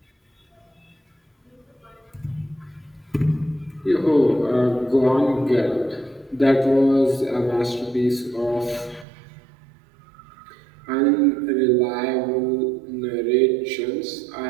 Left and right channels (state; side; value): drops out; left; at 9.1 s